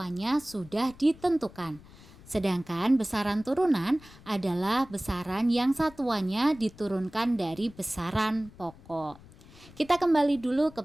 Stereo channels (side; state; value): left; noise; rumble, 22 dB below the sound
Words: sudah ditentukan. Sedangkan besaran turunan adalah besaran yang satuannya diturunkan dari besaran pokok. Kita kembali dulu ke